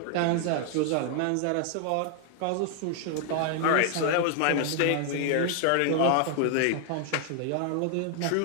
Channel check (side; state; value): both; different; correlation 0.00